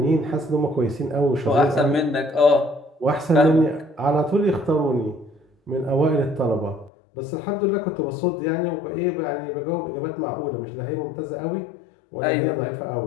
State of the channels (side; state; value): right; drops out; at 6.9 s